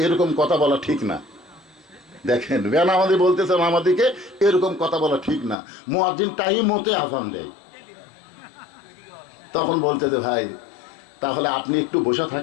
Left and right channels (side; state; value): right; drops out; at 5.6 s